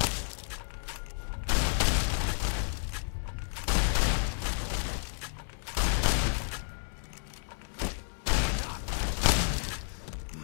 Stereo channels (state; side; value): silent; right; digital silence